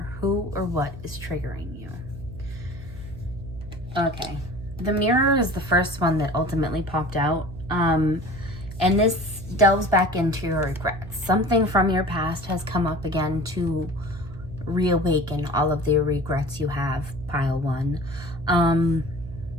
who or what is triggering you? Okay, the mirror is the first one that ultimately popped out. And this delves back into your regrets. Something from your past has come up again to reawaken all of the regrets you have, pile one. And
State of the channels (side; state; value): right; noise; hum, 13 dB below the sound